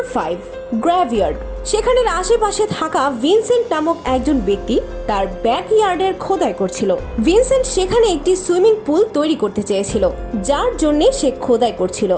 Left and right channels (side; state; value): both; identical; correlation 1.00